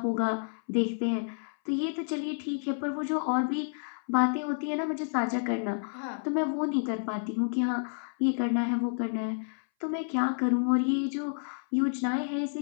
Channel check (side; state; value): right; silent; 58 dB below the other